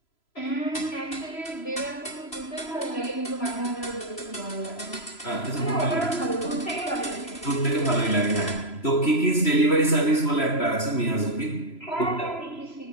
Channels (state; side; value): late; right; 3.0 ms